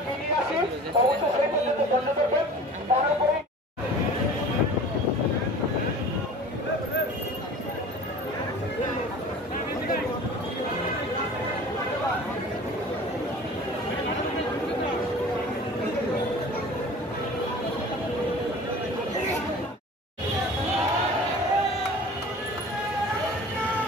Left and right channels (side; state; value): both; normal; correlation 0.41